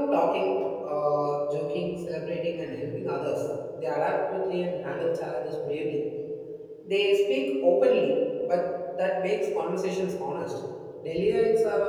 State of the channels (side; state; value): both; identical; correlation 1.00